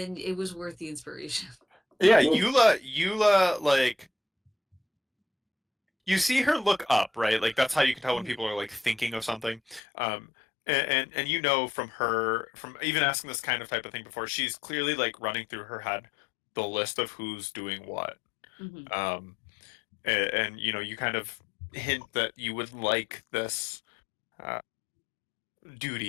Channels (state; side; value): drops out; right; at 9.8 s